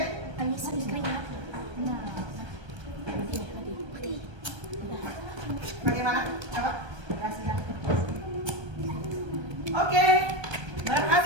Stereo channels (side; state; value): left; late; 1.3 ms